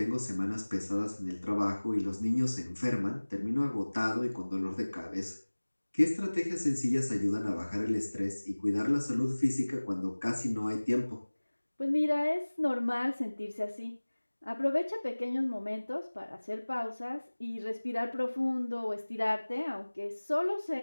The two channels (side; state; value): both; inverted; correlation -1.00